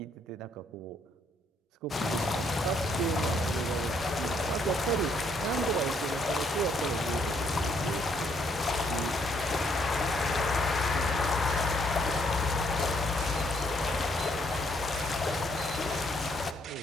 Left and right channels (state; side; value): normal; both; correlation 0.70